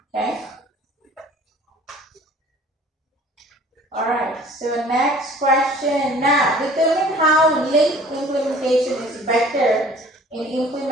Okay? Alright, so next question. Now, determine how link implementation is better in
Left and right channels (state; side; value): normal; both; correlation 0.50